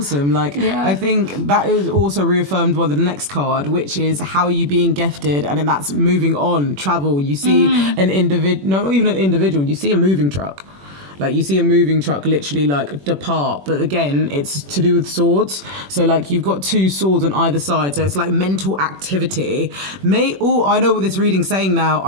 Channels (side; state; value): left; late; 21 ms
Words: Like, I think that is also reaffirmed by the next card, which is how are you being gifted, and then that's moving on, travel. You see an individual, not even an individual, you see a moving truck. Like, you see a moving truck literally, like, depart. But again, it's to do with swords. So, like, you've got 2 swords on either side. So it's, like, mental activity. I know what this reading's saying now.